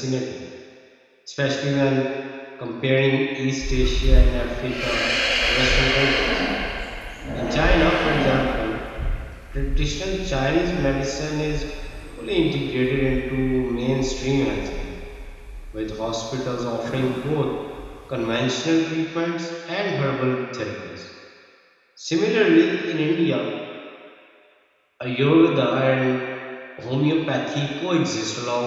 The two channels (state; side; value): identical; both; correlation 1.00